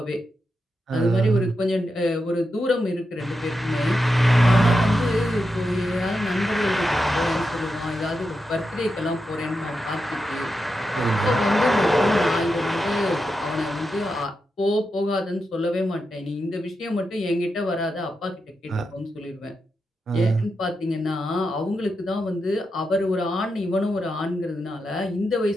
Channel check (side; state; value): both; normal; correlation 0.87